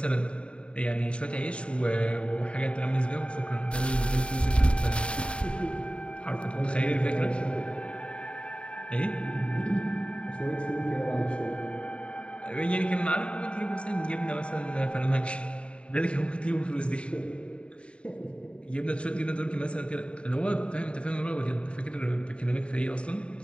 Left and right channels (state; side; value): late; right; 0.057 ms